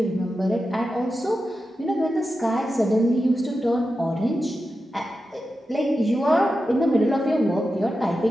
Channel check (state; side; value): normal; both; correlation 0.91